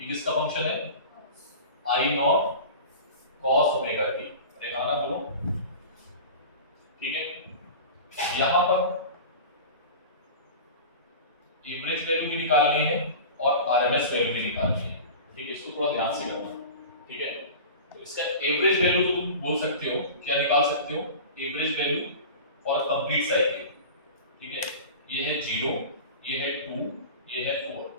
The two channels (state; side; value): inverted; both; correlation -0.34